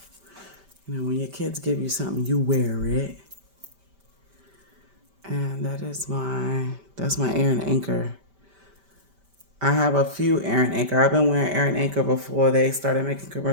when your kids give you something, you wear it. And that's my Aaron Anchor. I have a few Aaron Anchor. I've been wearing Aaron Anchor before they started making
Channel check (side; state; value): left; late; 5.1 ms